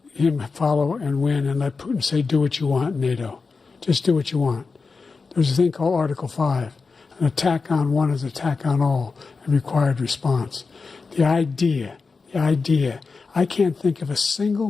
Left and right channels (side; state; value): right; quieter; 4.5 dB